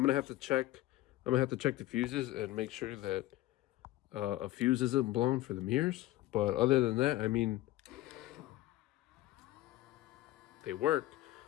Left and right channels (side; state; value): right; quieter; 16.3 dB